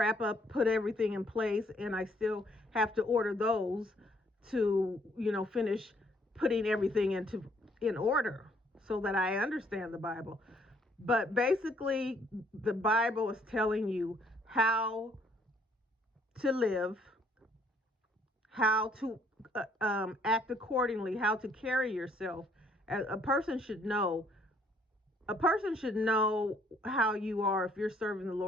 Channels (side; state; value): both; normal; correlation 0.66